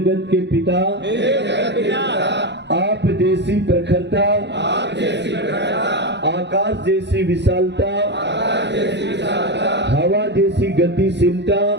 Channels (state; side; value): late; left; 0.51 ms